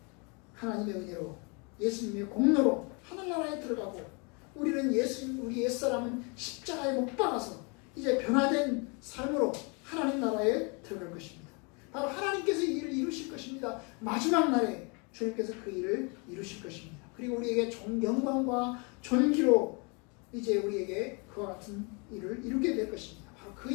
하나님의 은혜로 예수님의 공로로 하늘나라에 들어가고 우리 옛사람은 십자가에 못 박아서 이제 변화된 삶으로 하나님 나라에 들어갈 것입니다. 바로 하나님께서 이 일을 이루실 것입니다. 마지막 날에 주님께서 그 일을 이루실 것입니다. 그리고 우리에게 영광과 존귀로 이제 우리에게 그와 같은 일을 이루게 될 것입니다. 바로 그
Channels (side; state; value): right; quieter; 32.5 dB